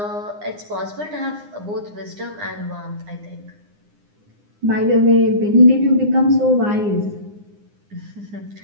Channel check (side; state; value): left; late; 9.8 ms